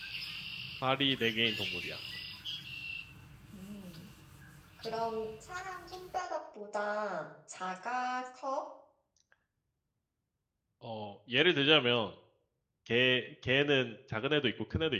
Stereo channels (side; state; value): both; identical; correlation 1.00